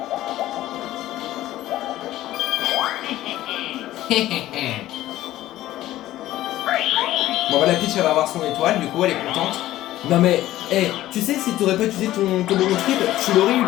Bon bah la Peach elle va avoir son étoile, du coup elle est contente. Non mais, hey, tu sais si t'aurais pas utilisé ton bonbon triple, tu l'aurais eu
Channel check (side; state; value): right; quieter; 14.7 dB